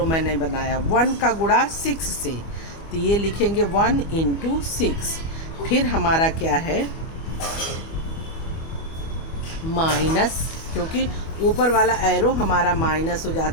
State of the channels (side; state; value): right; late; 25 ms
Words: मैंने बनाया, 1 का गुणा 6 से, तो ये लिखेंगे 1 इंटू 6। फिर हमारा क्या है माइनस, क्योंकि ऊपर वाला एरो हमारा माइनस हो